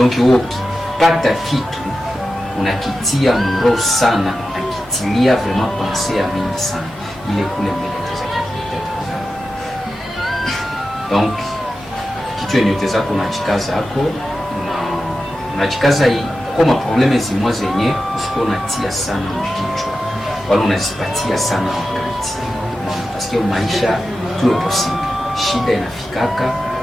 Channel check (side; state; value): both; normal; correlation 0.92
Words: wewe ukipata kitu unakitia mro sana, unakitilia vraiment pensée ya mingi sana, ile kule mbele déjà qui. Donc kitu yenye utaweza kunachikaza yako unachikaza kama probleme zimwa zenye usiko unatia sana mkichwa wala unazipatia sana wakati. Parce que maisha tout est possible, shida inafikaka